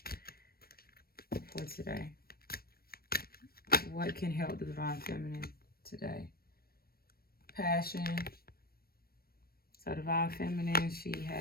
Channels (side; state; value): right; late; 0.44 ms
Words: for today? What can help the Divine Feminine today? Passion. So Divine Feminine, she